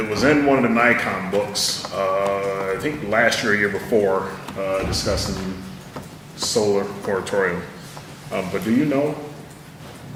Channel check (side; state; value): both; identical; correlation 1.00